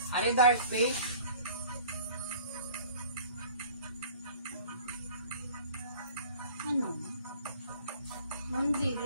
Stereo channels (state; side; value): inverted; both; correlation -0.49